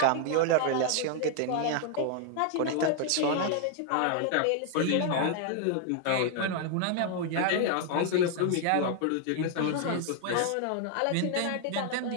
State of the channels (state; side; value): different; both; correlation 0.00